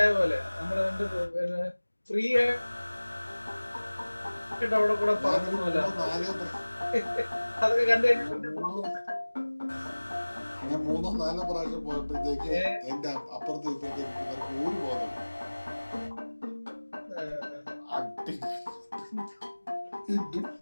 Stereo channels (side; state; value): both; inverted; correlation -1.00